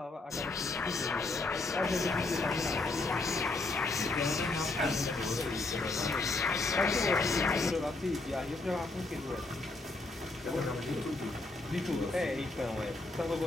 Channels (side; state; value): right; quieter; 3.2 dB